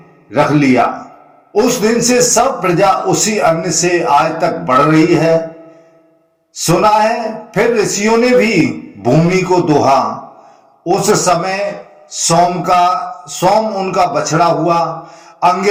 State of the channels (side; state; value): both; identical; correlation 1.00